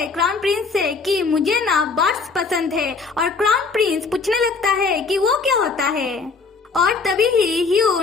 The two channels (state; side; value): quieter; right; 4.6 dB